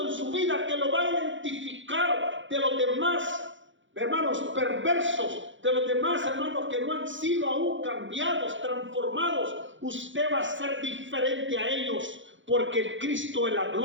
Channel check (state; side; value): late; left; 0.55 ms